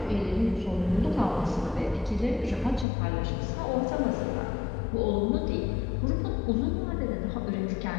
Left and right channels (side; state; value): right; drops out; at 2.9 s